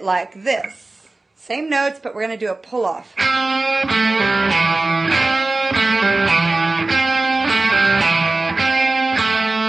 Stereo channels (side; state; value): left; quieter; 3.1 dB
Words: like this. Same notes, but we're going to do a pull-off.